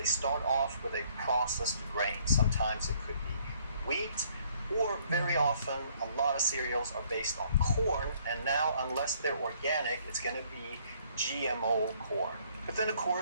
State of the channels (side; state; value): both; inverted; correlation -0.63